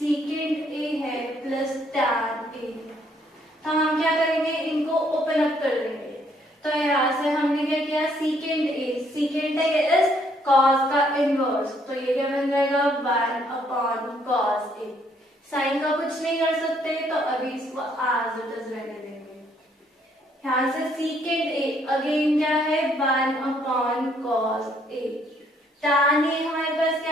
ए है प्लस टैन ए। तो हम क्या करेंगे इनको ओपन अप कर देंगे। तो यहाँ से हमने क्या किया सीकेंड ए इज कॉस का इनवर्स, तो ये क्या बन जाएगा 1 अपॉन कॉस ए। साइन का कुछ नहीं कर सकते तो अभी इसको एज इट इज रहने देंगे। यहाँ से सीकेंड ए अगेन क्या है 1 अपॉन कॉस ए, tan ए हमारे पास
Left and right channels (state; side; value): normal; both; correlation 0.67